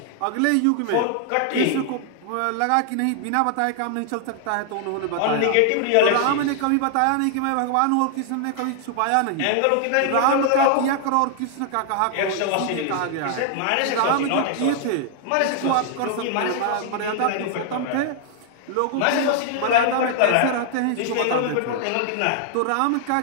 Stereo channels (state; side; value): different; both; correlation 0.00